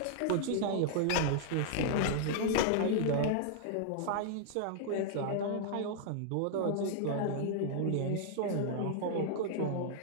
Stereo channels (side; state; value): both; different; correlation -0.01